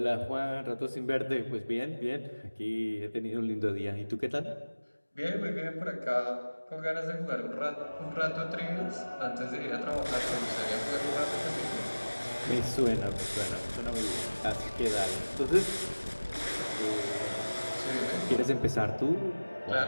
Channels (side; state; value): both; inverted; correlation -1.00